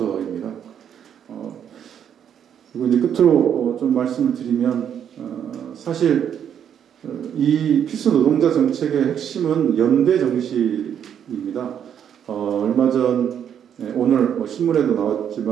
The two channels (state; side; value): quieter; left; 8.9 dB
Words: 그리고 이제 끝으로 좀 말씀을 드리면 사실 이 필수 노동자 정책의 핵심은 연대 정신입니다. 얼마 전 오늘 신문에도